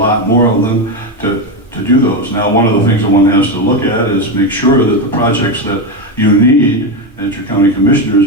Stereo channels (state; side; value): normal; both; correlation 0.12